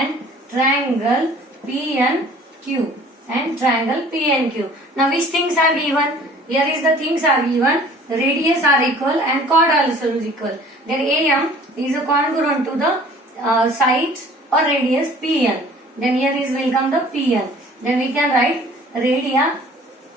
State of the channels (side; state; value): both; normal; correlation 0.50